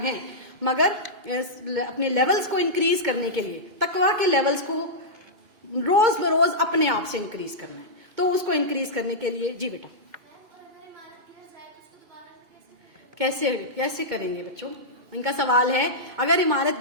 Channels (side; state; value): left; late; 2.2 ms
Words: ہیں، مگر اپنے لیولز کو انکریز کرنے کے لیے، تقویٰ کے لیولز کو روز بروز اپنے آپ سے انکریز کرنا ہے۔ تو اس کو انکریز کرنے کے لیے جی بیٹا کیسے کریں گے بچوں؟ ان کا سوال ہے اگر